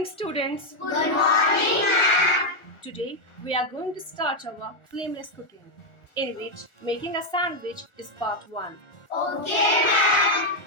students. Good morning, ma'am. Today we are going to start our flameless cooking, in which making a sandwich is part 1. Okay, ma'am.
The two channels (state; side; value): late; right; 1.4 ms